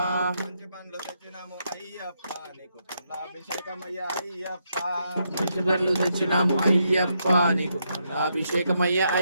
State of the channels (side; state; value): both; inverted; correlation -0.79